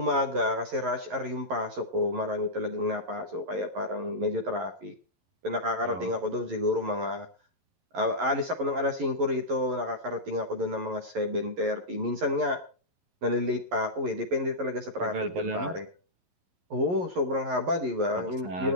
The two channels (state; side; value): late; left; 11 ms